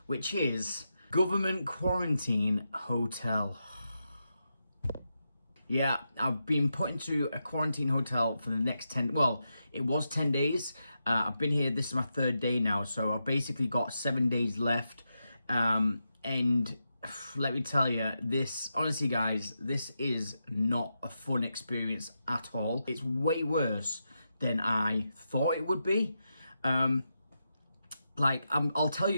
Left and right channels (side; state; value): both; inverted; correlation -0.86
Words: which is government quarantine hotel. Yeah, I've been put into a quarantine hotel for the next 10, well, it was 10 days. I've been here, this is my third day now, so I've basically got 7 days left. And let me tell you, this, honestly guys, this is not a fun experience at all. It's way worse than I thought it would be. I'll tell you